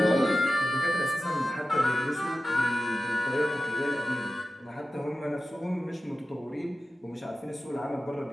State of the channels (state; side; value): normal; both; correlation 0.93